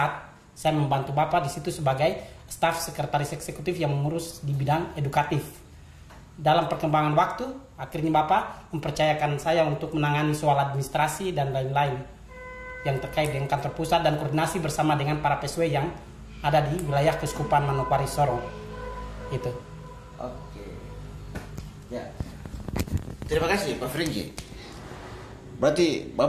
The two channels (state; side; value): identical; both; correlation 1.00